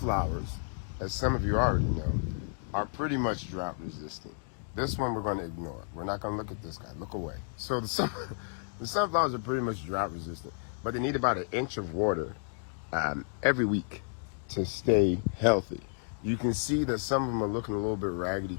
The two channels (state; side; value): silent; right; digital silence